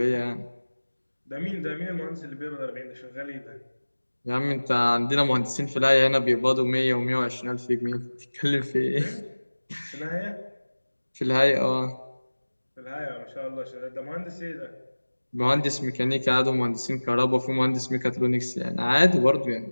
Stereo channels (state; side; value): inverted; both; correlation -1.00